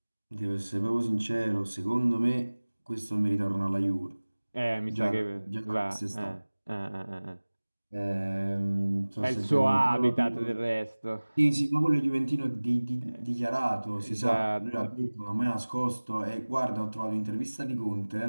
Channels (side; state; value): both; inverted; correlation -1.00